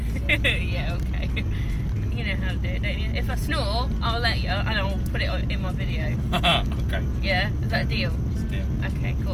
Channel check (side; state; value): both; identical; correlation 1.00